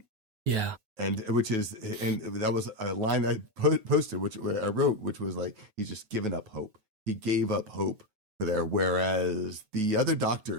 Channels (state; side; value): late; left; 9.2 ms